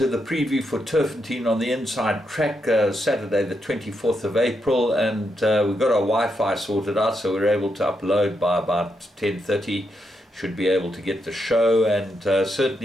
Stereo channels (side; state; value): both; normal; correlation 0.82